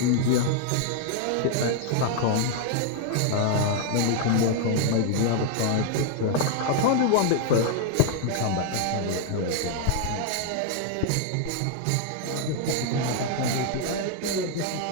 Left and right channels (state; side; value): different; both; correlation 0.00